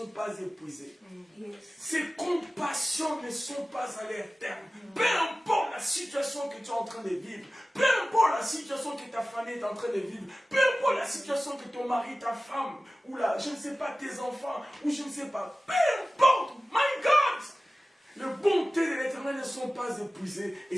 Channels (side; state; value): both; normal; correlation 0.96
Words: pas épuisées. Ses compassions ne sont pas à leur terme. Peu importe la situation que tu es en train de vivre, peu importe la situation que ta famille est en train de vivre, peu importe la situation que ton mari, ta femme, ou là, je ne sais pas, tes enfants, ou je ne sais pas, peu importe, my God! Les bontés de l'Éternel ne sont pas épuisées et